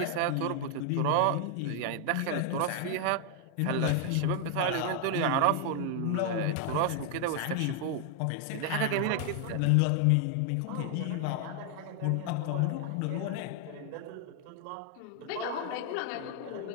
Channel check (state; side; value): different; both; correlation 0.00